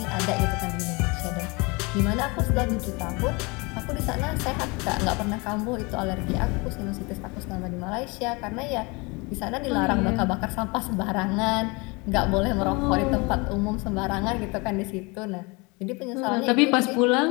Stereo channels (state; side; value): quieter; right; 27.5 dB